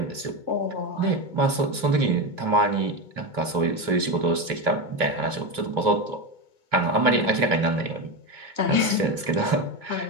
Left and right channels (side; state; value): left; late; 2.7 ms